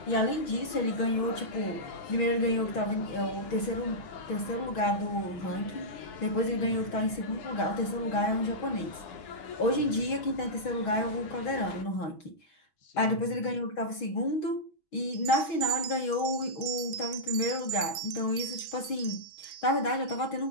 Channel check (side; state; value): right; late; 6.2 ms